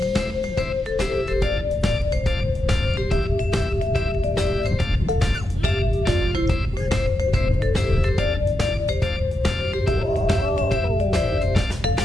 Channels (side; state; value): both; normal; correlation 0.86